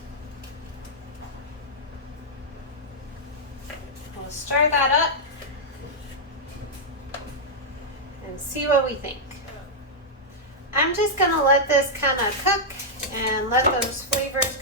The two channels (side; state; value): both; normal; correlation -0.07